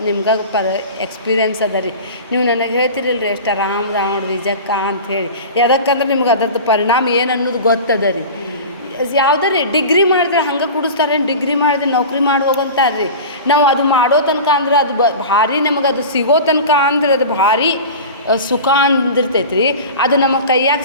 ನಿಮ್ಗೆ ಎಕ್ಸ್ಪೀರಿಯೆನ್ಸ್ ಅದ ರೀ. ನೀವು ನನಗೆ ಹೇಳ್ತಿರಲ್ರಿ ಎಷ್ಟು ಆರಾಮ್ ನೋಡ್ರಿ ಜಕ್ಕ ಅಂಥೇಳಿ. ಯಾವ್ದಕ್ಕಂದ್ರೆ ನಿಮ್ಗೆ ಅದರದ್ದು ಪರಿಣಾಮ ಏನು ಅನ್ನೋದು ಗೊತ್ತದ ರೀ. ಯಾವುದೇ ಡಿಗ್ರಿ ಮಾಡಿದ್ರೆ ಹಂಗೆ ಕುಡಿಸ್ತಾರೆ, ಡಿಗ್ರಿ ಮಾಡಿದ್ರೆ ನೌಕರಿ ಮಾಡಿ ಹೋಗಂತಾರೆ ರೀ. ನಾವು ಅದು ಮಾಡೋ ತನಕ ಅಂದ್ರೆ ಅದು ಭಾರಿ ನಮಗೆ ಅದು ಸಿಗೋ ತನಕ ಅಂದ್ರೆ ಅದು ಭಾರಿ ಸುಖ ಅಂದಿರ್ತೈತೆ ರೀ. ಅದು ನಮ್ಮ ಕೈಯಾಗ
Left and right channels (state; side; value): inverted; both; correlation -0.33